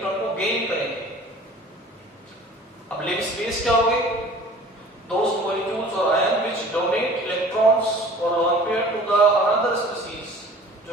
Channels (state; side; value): normal; both; correlation 0.46